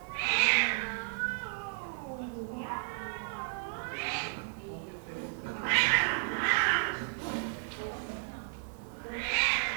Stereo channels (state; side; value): silent; left; digital silence